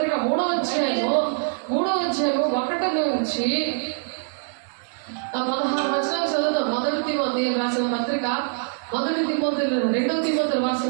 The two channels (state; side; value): silent; left; digital silence